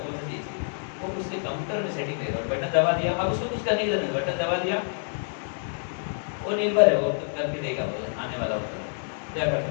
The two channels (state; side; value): silent; right; digital silence